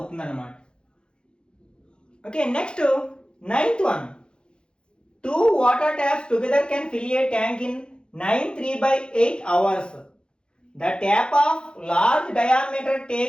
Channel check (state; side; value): late; right; 0.051 ms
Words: అన్నమాట. Okay, next 9th one. 2 water taps together can fill a tank in 9 3/8 hours. The tap of large diameter